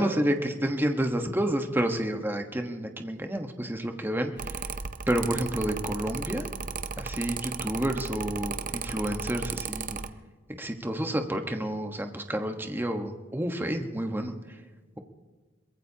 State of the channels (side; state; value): both; normal; correlation 0.77